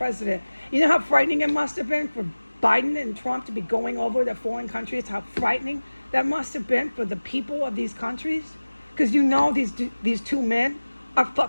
You know how frightening it must have been for Biden and Trump to be going over to foreign countries? How frightening that must have been for the people of these countries? Because you know these two men are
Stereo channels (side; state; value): both; inverted; correlation -1.00